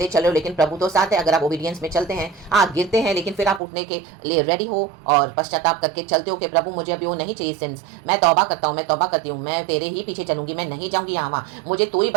चल रहे हो, लेकिन प्रभु तो साथ है। अगर आप ओबीडियंस में चलते हैं, आप गिरते हैं, लेकिन फिर आप उठने के लिए रेडी हो और पश्चाताप करके चलते हो कि प्रभु मुझे अभी वो नहीं चाहिए सिंस, मैं तौबा करता हूँ, मैं तौबा करती हूँ, मैं तेरे ही पीछे चलूंगी, मैं नहीं जाऊंगी यहाँ वहाँ, मुझे तू ही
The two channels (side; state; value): left; drops out; at 3.6 s